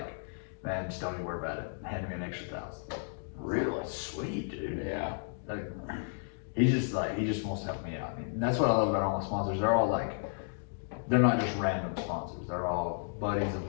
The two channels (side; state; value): right; silent; digital silence